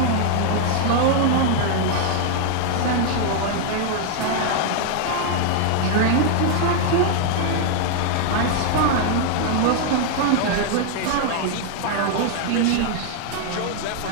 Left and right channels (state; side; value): different; both; correlation 0.00